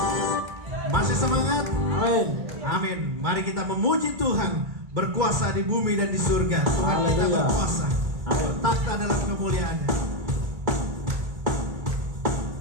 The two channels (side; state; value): left; late; 2.2 ms